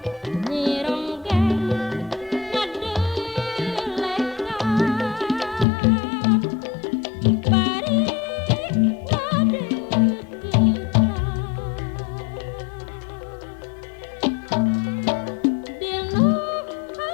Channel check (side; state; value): right; drops out; at 5.7 s